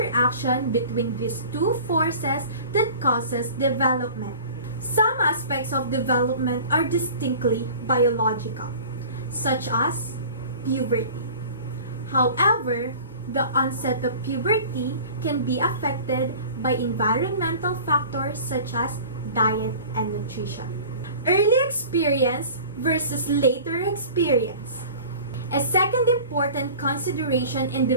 between these two forces that causes development. Some aspects of development are distinctly biological, such as puberty. However, the onset of puberty can be affected by environmental factors such as diet and nutrition. Early experience versus later experience. A second important consideration in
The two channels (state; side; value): inverted; both; correlation -0.42